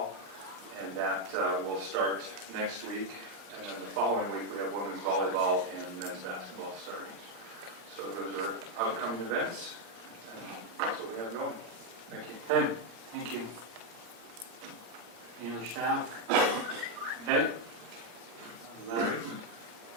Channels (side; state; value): left; late; 18 ms